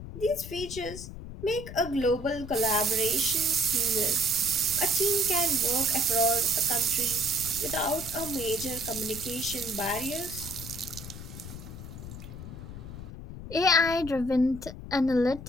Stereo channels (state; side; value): noise; left; rumble, 11 dB below the sound